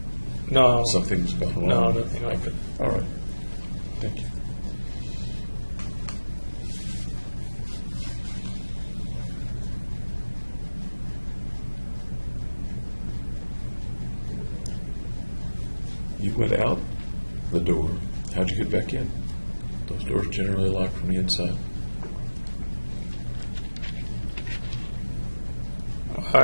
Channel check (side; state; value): both; inverted; correlation -1.00